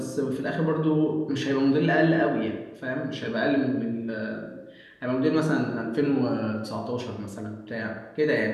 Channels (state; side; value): identical; both; correlation 1.00